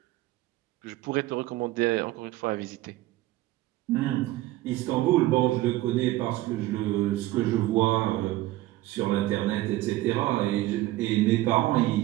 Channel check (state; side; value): quieter; left; 16.8 dB